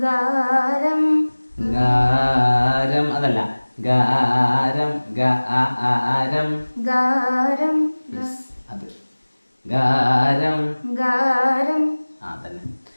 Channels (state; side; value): inverted; both; correlation -1.00